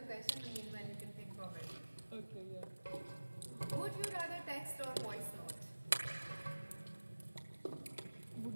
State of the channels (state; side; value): inverted; both; correlation -1.00